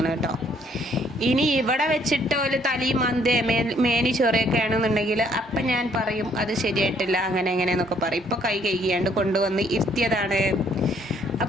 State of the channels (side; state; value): both; normal; correlation 0.65